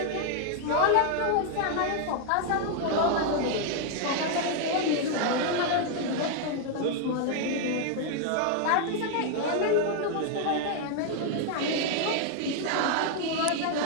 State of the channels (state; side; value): different; both; correlation 0.00